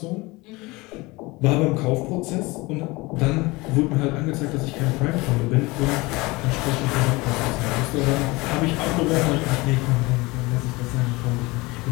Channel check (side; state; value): right; quieter; 23.1 dB